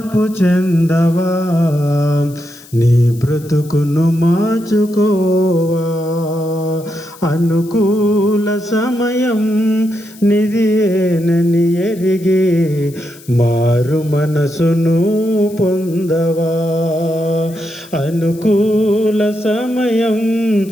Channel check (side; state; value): left; noise; hiss, 22 dB below the sound